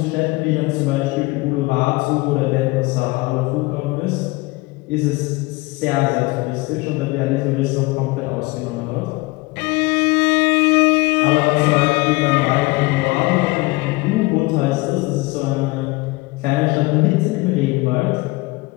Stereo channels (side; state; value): right; quieter; 23.4 dB